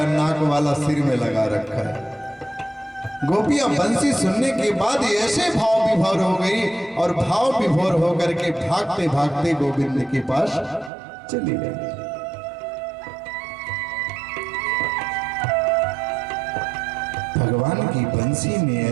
नाक वाला सिर में लगा रखा है। गोपियां बंसी सुनने के बाद ऐसे भाव विभोर हो गई और भाव विभोर होकर के भागते भागते गोविंद के पास चली गई। भगवान की बंसी में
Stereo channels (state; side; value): drops out; left; at 10.9 s